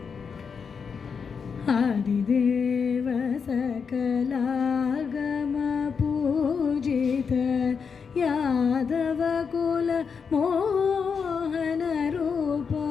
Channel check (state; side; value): quieter; right; 6.0 dB